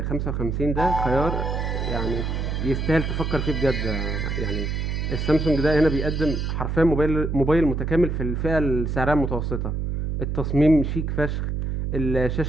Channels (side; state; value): right; noise; hum, 1 dB below the sound